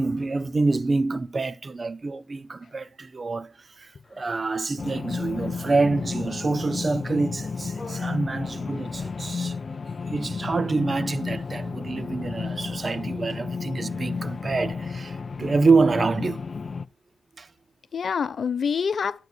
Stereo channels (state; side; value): normal; both; correlation 0.91